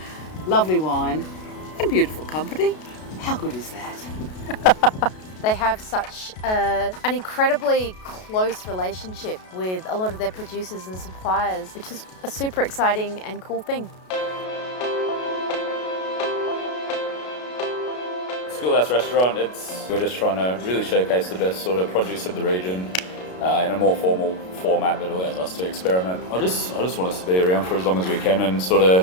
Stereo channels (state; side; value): late; right; 33 ms